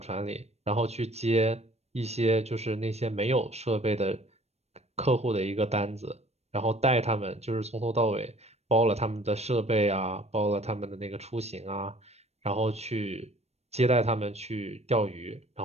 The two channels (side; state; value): left; late; 0.31 ms